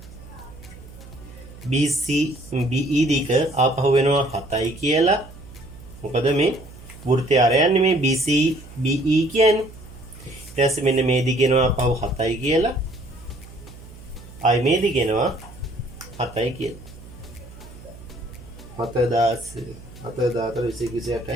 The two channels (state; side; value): noise; right; hum, 18 dB below the sound